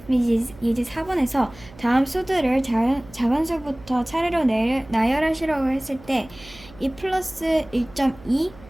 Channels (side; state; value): right; noise; hum, 21 dB below the sound